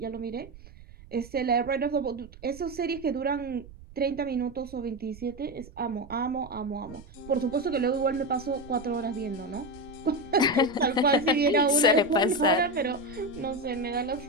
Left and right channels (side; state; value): right; noise; rumble, 19 dB below the sound